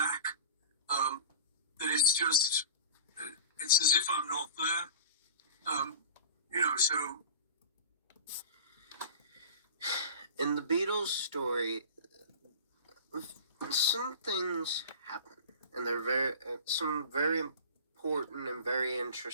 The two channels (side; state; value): both; inverted; correlation -0.37